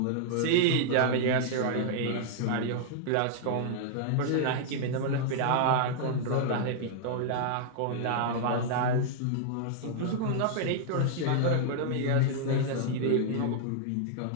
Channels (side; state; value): both; different; correlation -0.01